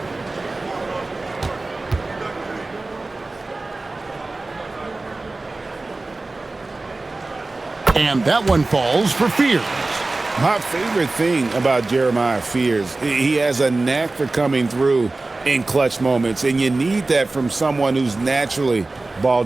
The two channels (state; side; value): quieter; left; 3.2 dB